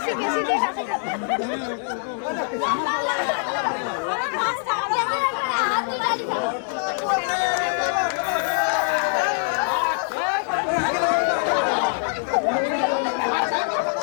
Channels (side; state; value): right; silent; digital silence